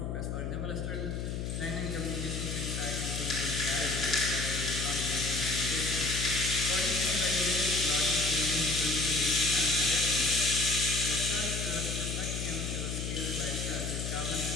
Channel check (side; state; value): left; noise; hum, 3 dB below the sound